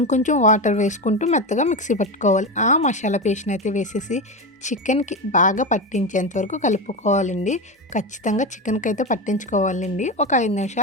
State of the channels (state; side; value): normal; both; correlation 0.18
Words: కొంచెం వాటర్ వేసుకుంటూ మెత్తగా మిక్సీ పట్టుకోవాలి. ఆ మసాలా పేస్ట్ని అయితే వేసేసి చికెన్కి బాగా పట్టించేంత వరకు కలుపుకోవాలండి. ఖచ్చితంగా చికెన్కి అయితే పట్టించుకోవాలండి. ఒక 5